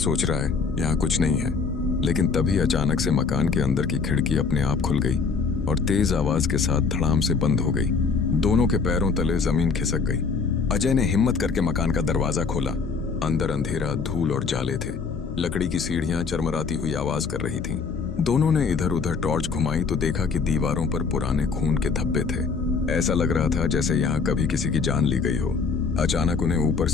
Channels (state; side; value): quieter; right; 5.1 dB